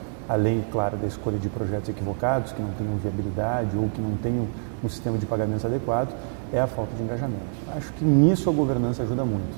além, claro, da escolha de projetos equivocados, que não tenham viabilidade ou que não tenham um sistema de pagamentos adequado, é a falta de engajamento. Acho que nisso a governança ajuda muito.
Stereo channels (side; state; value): left; silent; digital silence